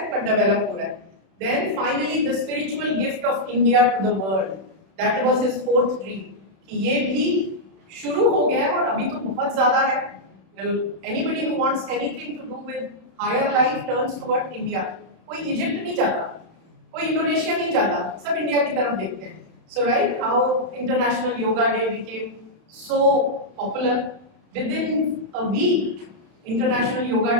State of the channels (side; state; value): left; late; 31 ms